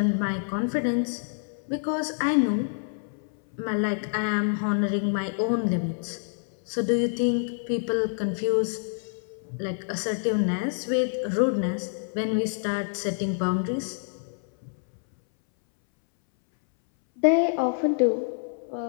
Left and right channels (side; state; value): right; silent; 60 dB below the other